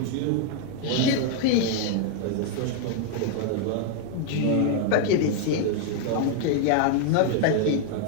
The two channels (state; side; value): different; both; correlation 0.00